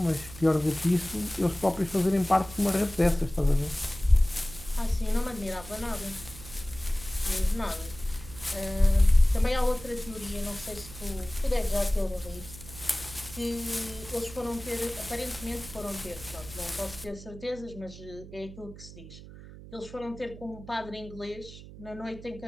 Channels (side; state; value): right; noise; hum, 16 dB below the sound